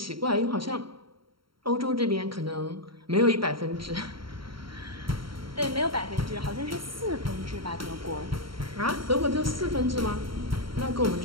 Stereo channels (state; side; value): late; left; 0.74 ms